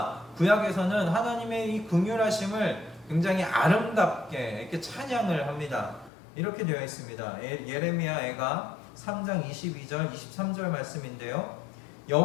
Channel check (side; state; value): right; drops out; at 6.1 s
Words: 구약에서는 하나님의 이 긍휼하심을 굉장히 아름답게 이렇게 찬양을 합니다. 이렇게 되어 있습니다. 예레미야 애가 3장 22절 23절 말씀인데요.